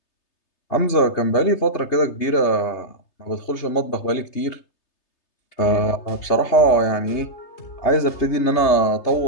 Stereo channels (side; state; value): right; late; 3.3 ms